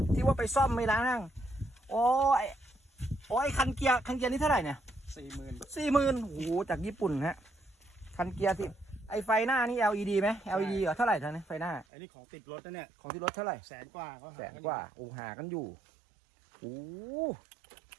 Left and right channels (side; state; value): left; drops out; at 11.9 s